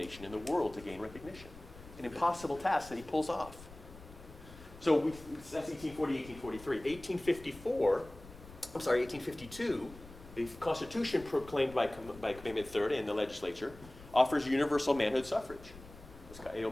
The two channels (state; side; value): noise; left; rumble, 18 dB below the sound